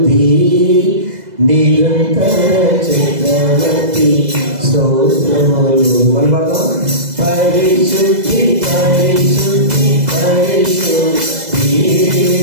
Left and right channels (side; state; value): left; late; 2.0 ms